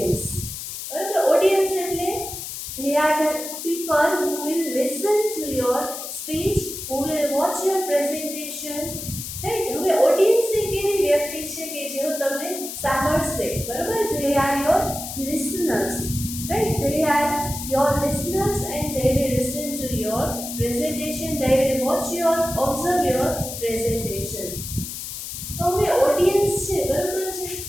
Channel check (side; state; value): left; noise; hiss, 8 dB below the sound